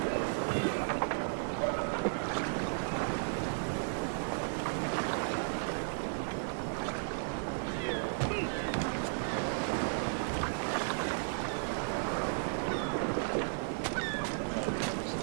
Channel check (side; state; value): left; silent; 55 dB below the other